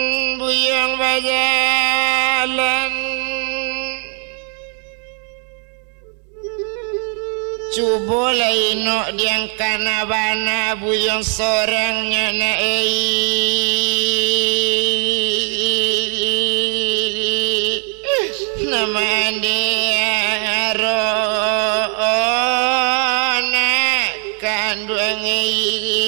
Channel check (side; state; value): left; quieter; 39.9 dB